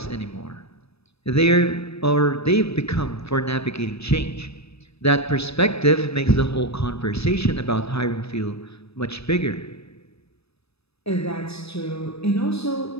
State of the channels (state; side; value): late; right; 0.78 ms